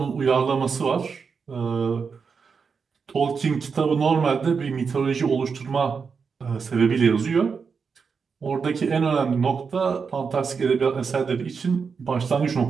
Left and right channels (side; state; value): left; quieter; 5.6 dB